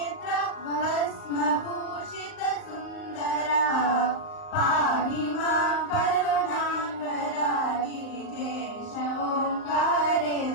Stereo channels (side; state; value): right; late; 38 ms